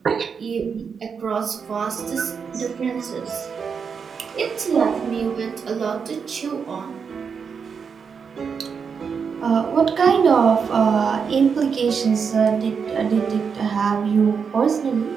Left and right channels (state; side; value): quieter; left; 6.2 dB